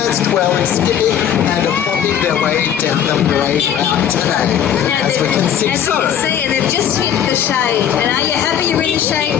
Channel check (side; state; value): right; quieter; 9.4 dB